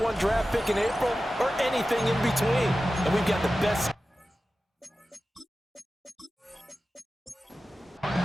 draft pick in April, or anything in between. And we've got the best.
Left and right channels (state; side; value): normal; both; correlation 0.94